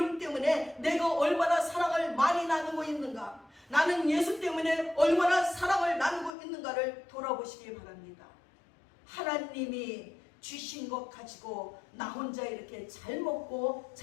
때문에 내가 얼마나 사랑을 많이 나누고 있는가, 나는 예수 때문에 얼마나 사랑을 나누고 있는가를 돌아보시기 바랍니다. 하나님이 주신 것 가지고 나 혼자 이렇게 잘 먹고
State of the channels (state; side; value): drops out; right; at 6.3 s